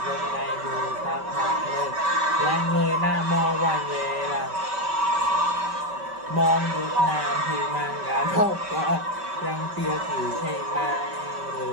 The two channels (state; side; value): late; left; 5.2 ms